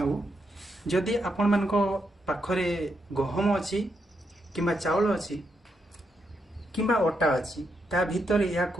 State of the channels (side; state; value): both; normal; correlation 0.81